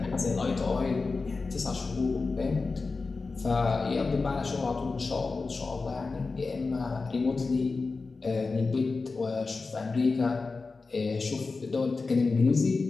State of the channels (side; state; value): right; quieter; 4.0 dB